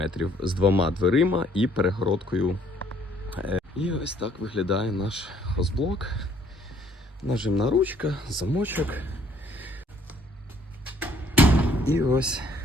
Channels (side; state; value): both; normal; correlation 0.62